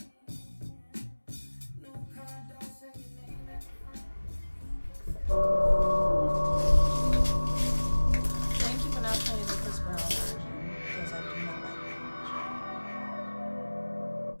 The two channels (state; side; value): inverted; both; correlation -1.00